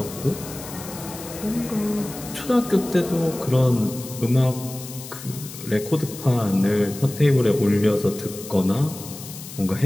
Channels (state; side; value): noise; left; hiss, 13 dB below the sound